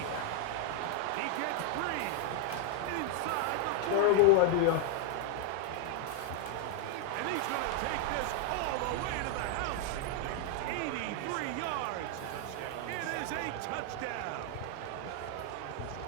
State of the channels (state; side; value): different; both; correlation 0.00